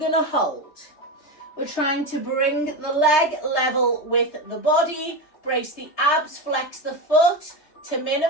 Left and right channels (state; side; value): late; right; 3.2 ms